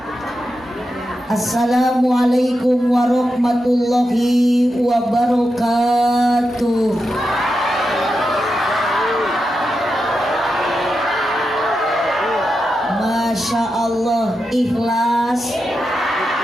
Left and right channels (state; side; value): normal; both; correlation 0.88